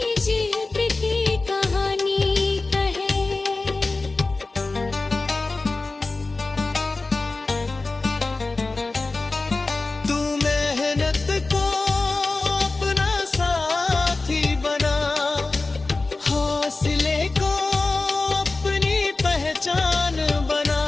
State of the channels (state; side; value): quieter; right; 3.5 dB